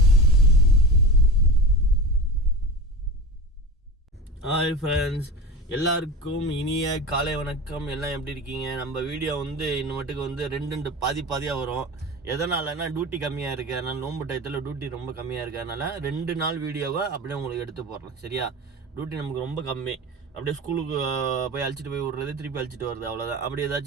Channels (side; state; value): both; normal; correlation 0.30